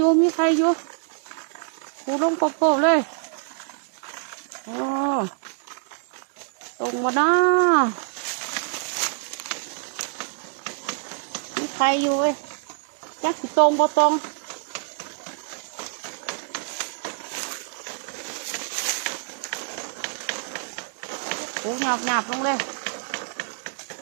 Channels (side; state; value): left; silent; digital silence